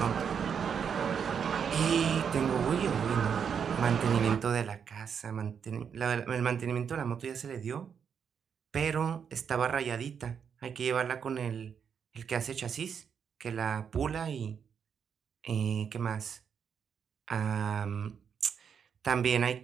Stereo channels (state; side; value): quieter; left; 7.2 dB